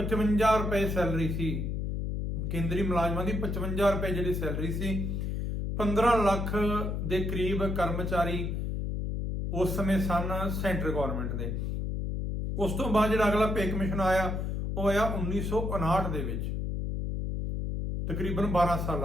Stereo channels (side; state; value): left; noise; hum, 2 dB below the sound